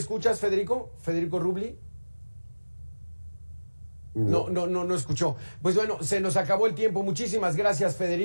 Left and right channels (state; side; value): inverted; both; correlation -1.00